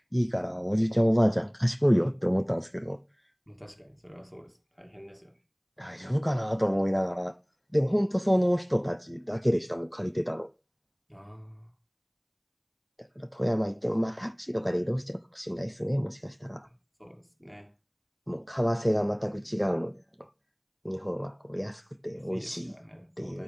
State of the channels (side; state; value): both; identical; correlation 1.00